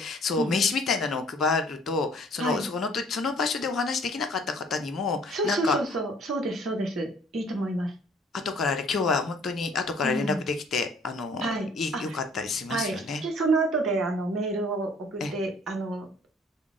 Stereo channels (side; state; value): both; normal; correlation 0.56